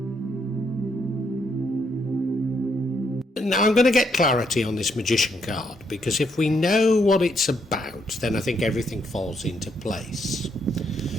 Now I'm going to get clarity on this Magician card, because if we know what it's about, then I think everything falls into place.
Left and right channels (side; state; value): both; normal; correlation 0.75